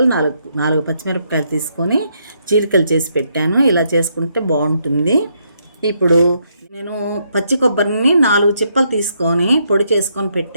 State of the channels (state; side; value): inverted; both; correlation -0.76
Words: నాలుగు పచ్చిమిరపకాయలు తీసుకొని చీలికలు చేసి పెట్టాను. ఇలా చేసుకుంటే బాగుంటుంది. ఇప్పుడు నేను పచ్చి కొబ్బరిని 4 చిప్పలు తీసుకొని పొడి చేసుకొని